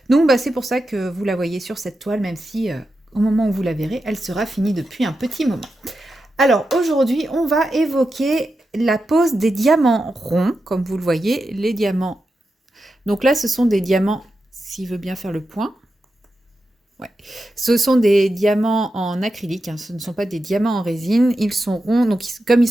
Donc c'est pour ça que vous la voyez sur cette toile, même si au moment où vous la verrez, elle sera finie depuis un petit moment. Alors aujourd'hui, on va évoquer la pose des diamants ronds, comme vous le voyez, les diamants. Donc là, ce sont des diamants, s'il veut bien faire le point. Ouais. Ce sont des diamants en acrylique, hein. Ce ne sont pas des diamants en résine. Ils sont ronds, donc comme ils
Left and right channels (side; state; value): both; normal; correlation 0.89